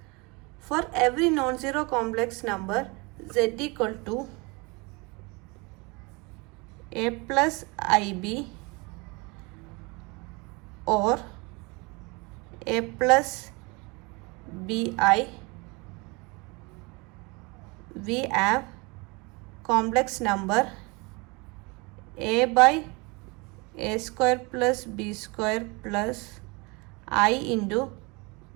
For every non-zero complex number, z equal to a plus ib or a plus bi, we have complex number a by a square plus b square plus I into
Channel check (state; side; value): quieter; left; 27.6 dB